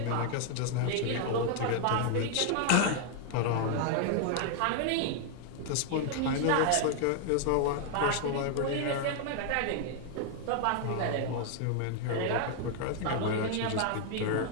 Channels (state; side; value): different; both; correlation 0.00